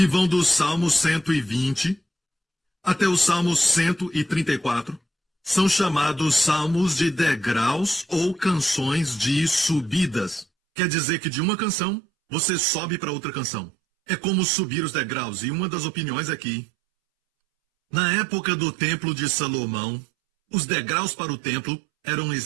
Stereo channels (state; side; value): drops out; left; at 10.5 s